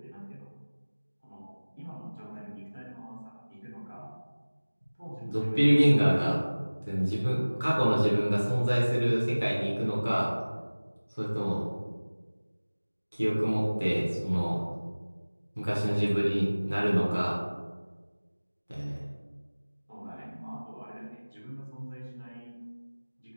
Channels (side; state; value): both; inverted; correlation -1.00